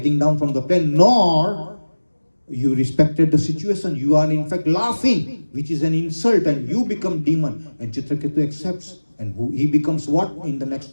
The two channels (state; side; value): inverted; both; correlation -1.00